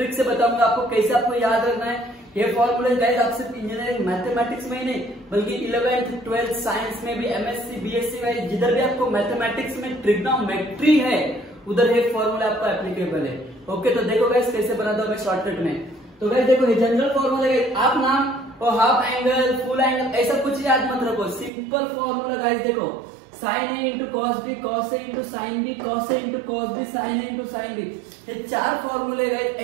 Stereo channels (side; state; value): left; drops out; at 21.5 s